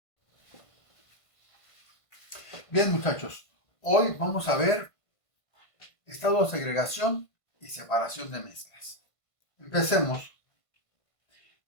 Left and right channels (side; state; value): right; late; 1.5 ms